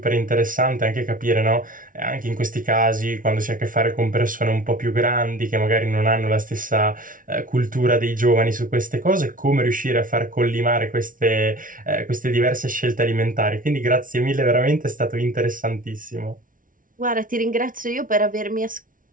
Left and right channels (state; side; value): late; left; 0.39 ms